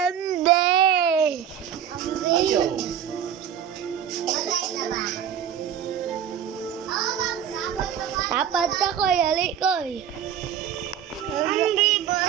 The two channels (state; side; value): quieter; left; 9.2 dB